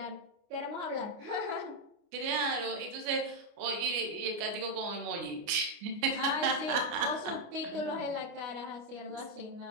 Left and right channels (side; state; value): left; late; 29 ms